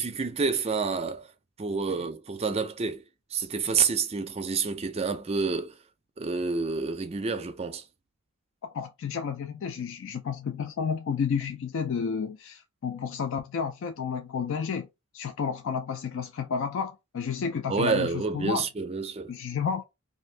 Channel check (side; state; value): both; normal; correlation 0.22